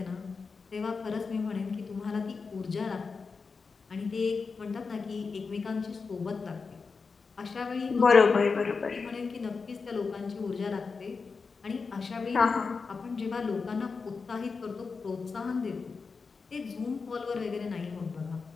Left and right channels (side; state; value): right; quieter; 4.8 dB